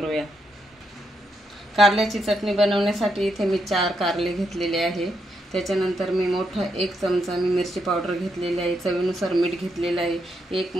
कारल्याची चटणी बनवण्यासाठी इथे मी 4 कारले घेतलेले आहे। त्याच्यानंतर मी मोठा 1 चमचा मी मिरची पावडर घेतलेली आहे, चवीनुसार मीठ घेतलेलं आहे, 1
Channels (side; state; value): both; normal; correlation 0.80